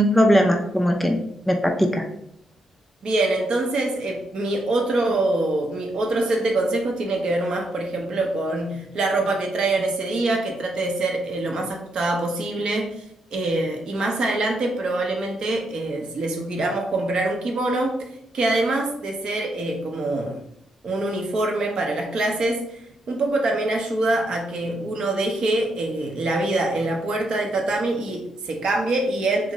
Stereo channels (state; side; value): normal; both; correlation 0.79